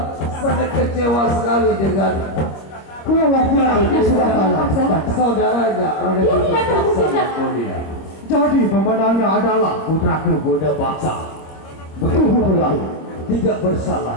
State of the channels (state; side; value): late; right; 25 ms